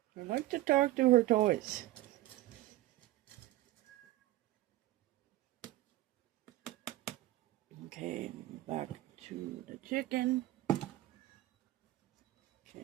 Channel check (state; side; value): quieter; left; 16.2 dB